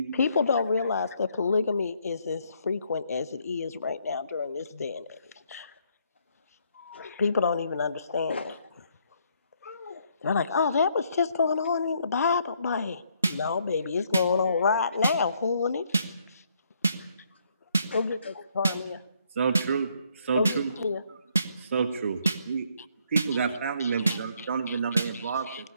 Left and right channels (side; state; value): both; inverted; correlation -0.71